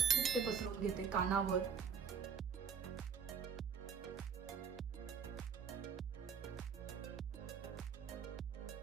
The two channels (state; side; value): quieter; left; 6.8 dB